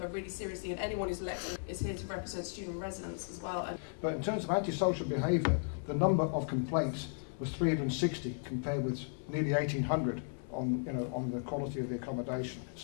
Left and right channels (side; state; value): right; silent; digital silence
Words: really seriously, and anyone who's elected is here to represent student residents as well. But in terms of antisocial behaviour, the number of complaints was 360 compared with nearly 1,800 on the quality of the accommodation.